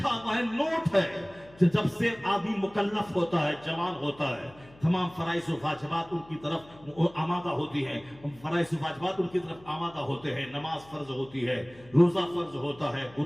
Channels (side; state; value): left; noise; hum, 25 dB below the sound